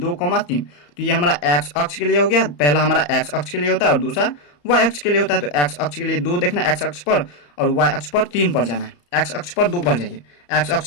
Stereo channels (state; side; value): late; right; 34 ms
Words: तो ये हमारा एक्स अक्ष के लिए हो गया, पहला हमारा एक्स अक्ष के लिए होता है और दूसरा वाई अक्ष के लिए होता है। तो एक्स अक्ष के लिए 2 देखना है एक्स अक्ष पर और वाई अक्ष पर 3 पर जाना है। एक्स अक्ष पर 2 पर जाइए, एक्स